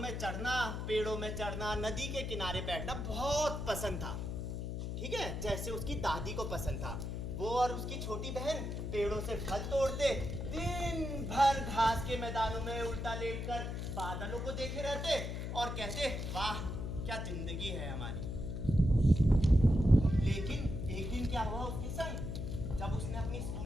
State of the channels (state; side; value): noise; left; hum, 4 dB below the sound